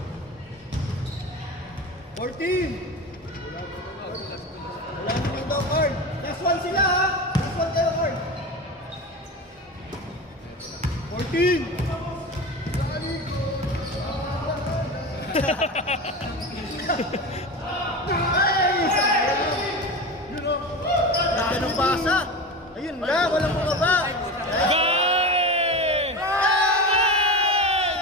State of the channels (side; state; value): both; normal; correlation 0.27